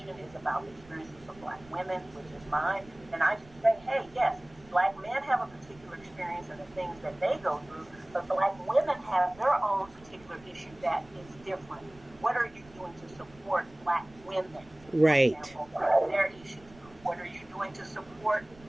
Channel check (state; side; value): noise; right; rumble, 24 dB below the sound